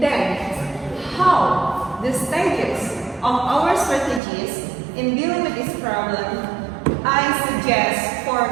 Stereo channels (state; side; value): drops out; left; at 4.2 s